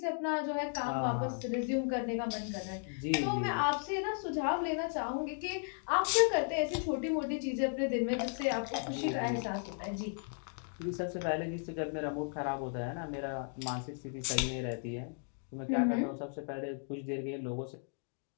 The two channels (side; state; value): right; silent; 54 dB below the other